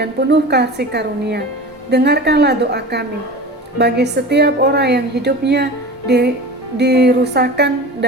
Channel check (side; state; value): both; normal; correlation 0.34